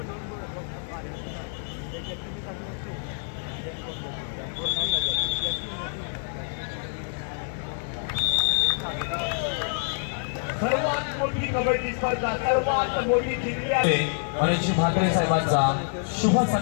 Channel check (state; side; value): silent; right; digital silence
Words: सर्वात मोठी कबड्डी स्पर्धा, सर्वात मोठी जिंकली आहे. मनीष म्हात्रे साहेबांचा शुभ